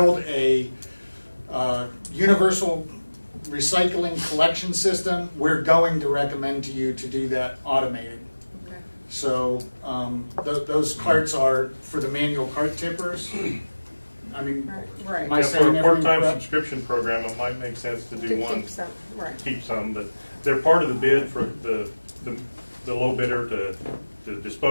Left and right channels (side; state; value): both; inverted; correlation -1.00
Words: a universal recycling collection system, we're going to recommend to you to do that automated. So those carts are for the manual cart tippers. Right. Am I saying for a everything part-time correct? subscription program, it might make sense to do one. Keep some, but they're part of the bid for the low bidder to